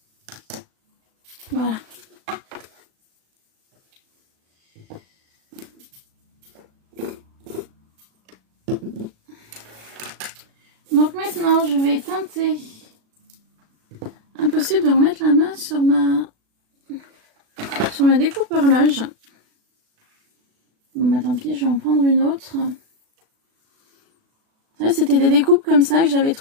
Voilà. Donc maintenant, je vais teinter. Impossible de remettre la main sur ma découpe horloge. Bon bah tant pis, je vais en prendre une autre. C'était des découpes comme ça que j'avais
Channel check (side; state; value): left; late; 36 ms